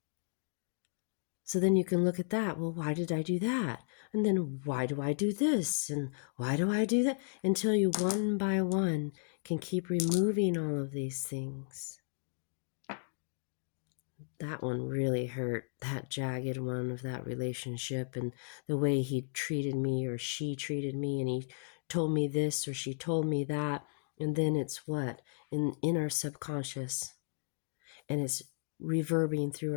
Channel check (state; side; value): silent; right; digital silence